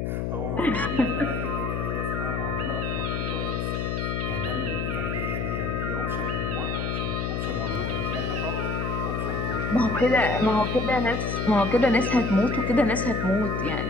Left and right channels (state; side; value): noise; left; hum, 1 dB below the sound